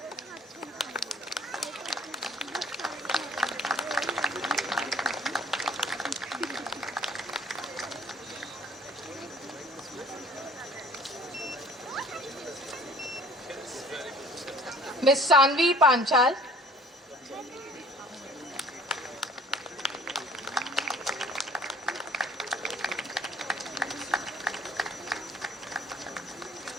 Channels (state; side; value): normal; both; correlation 0.53